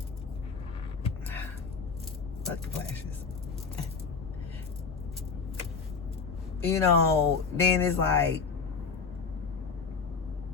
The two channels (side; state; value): right; quieter; 5.2 dB